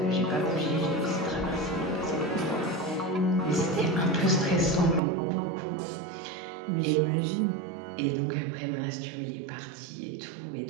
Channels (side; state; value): left; drops out; at 5.0 s